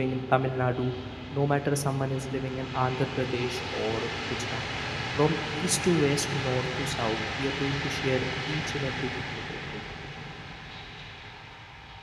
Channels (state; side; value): identical; both; correlation 1.00